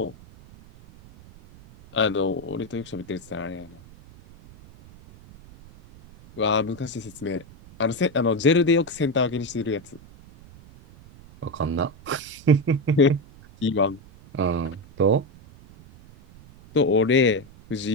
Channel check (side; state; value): right; noise; rumble, 22 dB below the sound